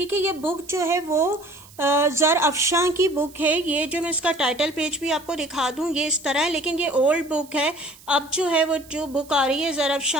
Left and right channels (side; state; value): right; noise; hiss, 23 dB below the sound